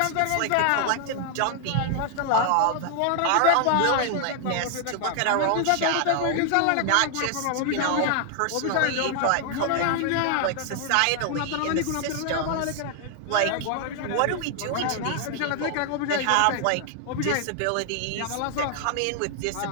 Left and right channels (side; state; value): both; different; correlation 0.00